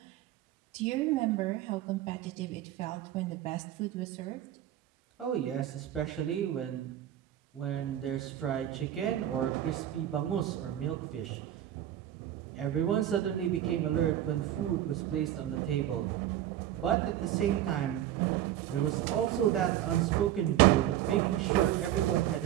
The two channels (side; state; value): left; quieter; 12.1 dB